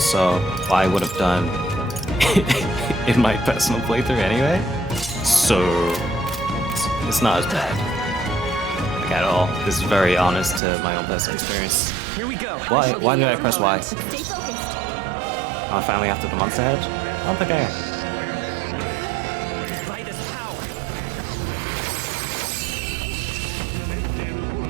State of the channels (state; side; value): drops out; left; at 10.6 s